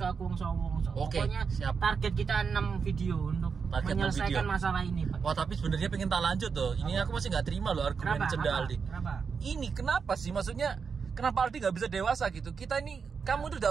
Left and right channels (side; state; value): left; quieter; 5.8 dB